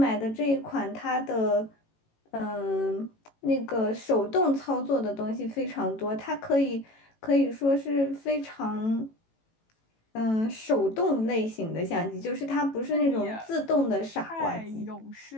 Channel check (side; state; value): right; late; 18 ms